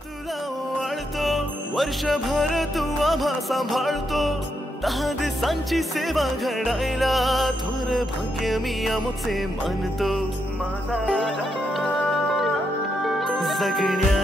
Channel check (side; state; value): both; normal; correlation 0.81